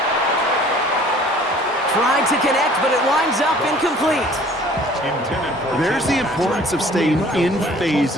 Tried to connect, but it winds up incomplete. There's the importance of staying in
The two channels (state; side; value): normal; both; correlation 0.52